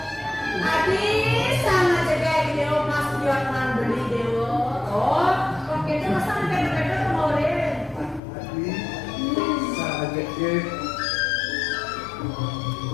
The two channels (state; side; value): drops out; right; at 8.2 s